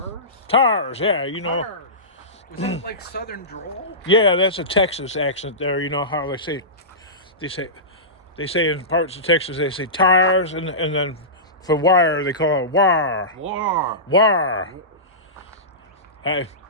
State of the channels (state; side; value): normal; both; correlation -0.20